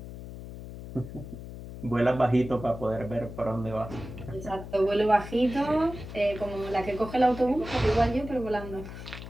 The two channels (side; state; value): left; noise; hum, 11 dB below the sound